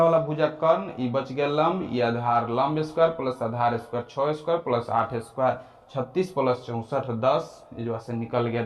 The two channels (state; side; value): identical; both; correlation 1.00